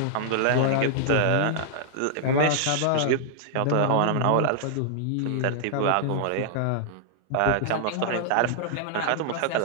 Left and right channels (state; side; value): different; both; correlation -0.01